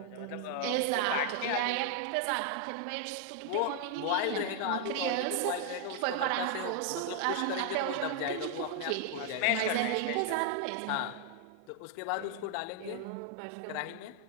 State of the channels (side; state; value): both; different; correlation 0.00